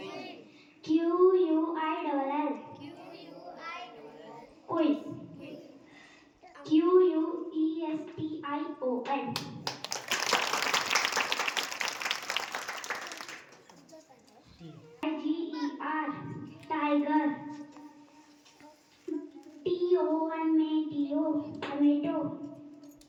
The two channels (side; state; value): both; identical; correlation 1.00